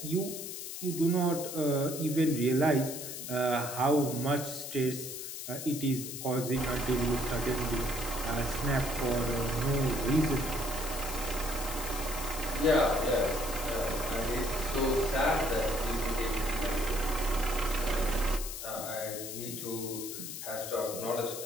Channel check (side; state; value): left; noise; hiss, 7 dB below the sound